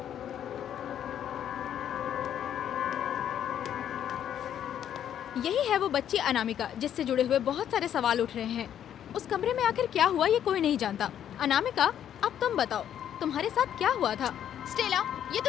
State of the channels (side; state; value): right; quieter; 10.0 dB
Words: यही है वो बच्ची अनामिका जिससे जुड़े हुए बहुत सारे सवाल उठ रहे हैं। उस कमरे में आखिर क्या हुआ ये कोई नहीं जानता। अनामिका, अब तुम बताओ, तुम्हारे साथ क्या हुआ था? स्टेला, ये